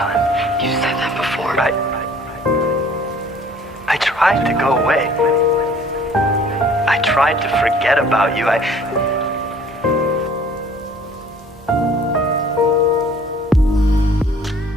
gone. You said that before. I tried to go away. I tried to forget about you.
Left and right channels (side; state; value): both; normal; correlation 0.53